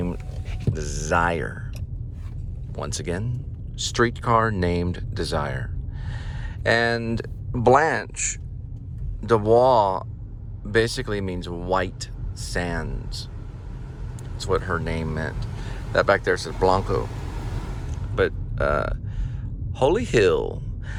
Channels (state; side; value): identical; both; correlation 1.00